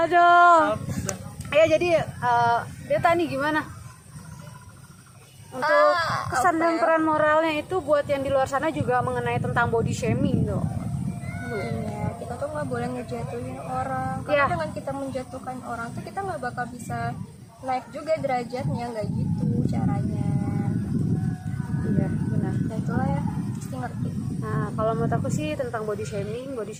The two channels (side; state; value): both; identical; correlation 1.00